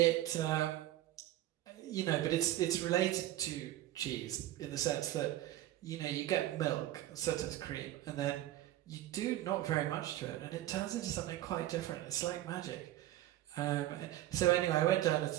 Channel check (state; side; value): quieter; left; 14.4 dB